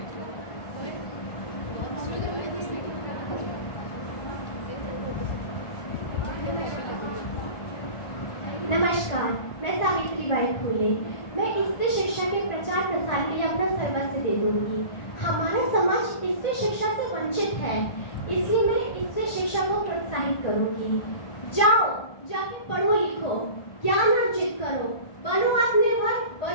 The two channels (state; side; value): late; right; 1.5 ms